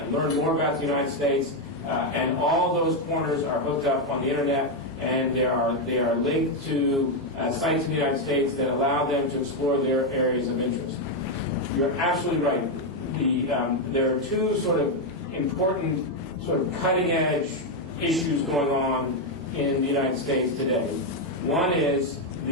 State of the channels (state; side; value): normal; both; correlation 0.04